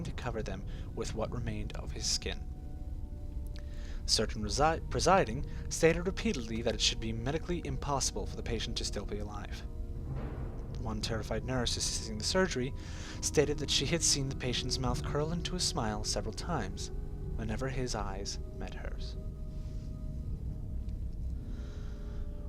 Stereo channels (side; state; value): both; identical; correlation 1.00